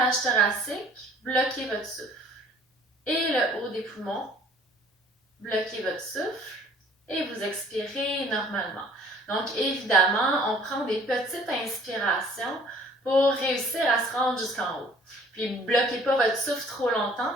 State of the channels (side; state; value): both; normal; correlation 0.53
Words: thoracique, bloquez votre souffle. Et le haut des poumons, bloquez votre souffle et vous expirez normalement. Donc, évidemment, on prend des petites inspirations pour réussir à se rendre jusqu'en haut. Puis, bloquez pas votre souffle trop longtemps,